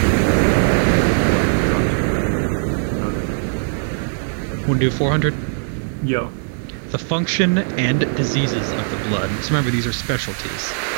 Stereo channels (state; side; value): silent; left; 64 dB below the other